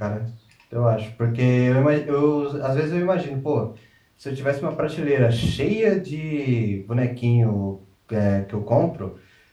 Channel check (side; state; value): both; identical; correlation 1.00